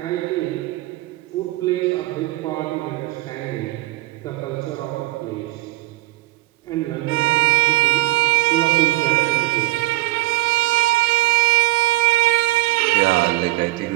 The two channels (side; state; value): left; quieter; 18.7 dB